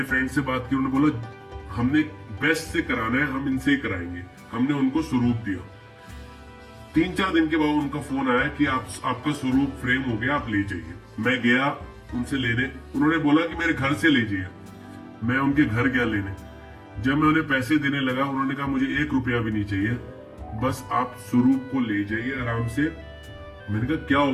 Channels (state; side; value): identical; both; correlation 1.00